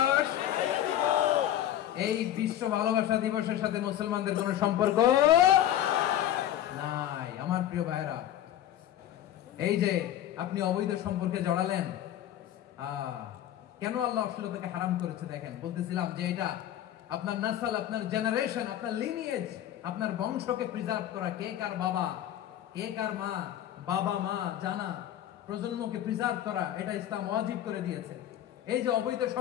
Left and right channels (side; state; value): right; quieter; 11.8 dB